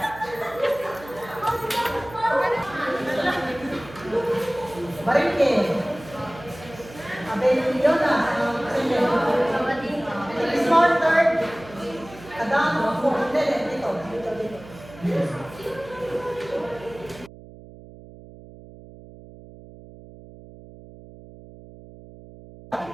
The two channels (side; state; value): right; noise; hum, 18 dB below the sound